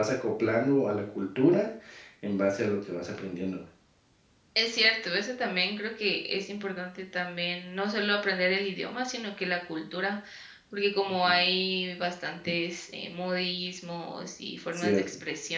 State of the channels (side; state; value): both; identical; correlation 1.00